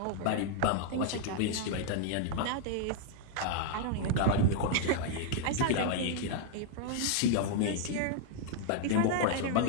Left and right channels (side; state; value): both; different; correlation 0.00